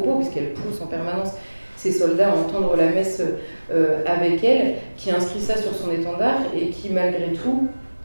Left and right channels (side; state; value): both; inverted; correlation -1.00